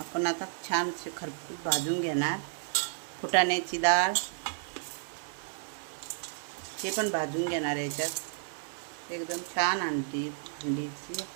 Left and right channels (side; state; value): left; silent; 56 dB below the other